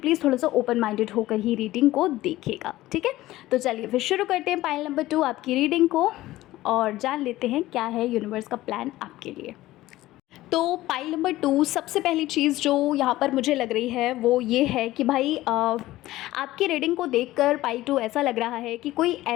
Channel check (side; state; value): right; quieter; 16.5 dB